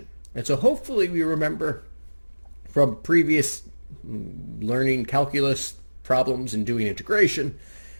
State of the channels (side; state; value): both; inverted; correlation -1.00